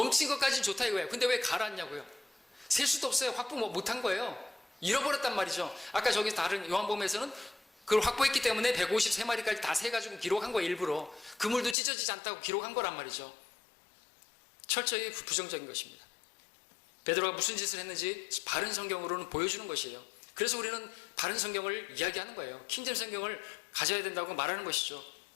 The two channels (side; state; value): right; drops out; at 11.8 s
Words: 것까지는 좋다 이거예요. 근데 왜 가라앉냐고요? 셀 수도 없어요. 확보 못한 거예요. 잃어버렸단 말이죠. 아까 저기 다른 요한복음에서는 그걸 확보했기 때문에 153마리까지 다 세가지고 기록한 거예요. 일부러 그물도 찢어지지 않다고 기록한 거란 말이죠. 철저히 부정적인 것입니다. 베드로가 무슨 짓을 했는지 바른 성경으로는 보여주는 것이에요. 그래서 우리는 바른 성경을 이야기하는 거예요. 킹잼 성경을 가져야 된다고 말하는 것이죠.